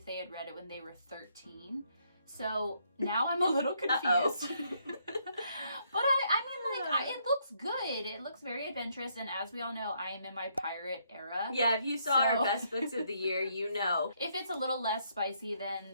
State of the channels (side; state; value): both; inverted; correlation -0.72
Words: they had read it when they were 13. So now I'm a little confused. But it looks good. It looks very adventurous, and as we all know, I am in my pirate era. Yeah, if you saw our best books of the year, you know. If it's a little less spicy than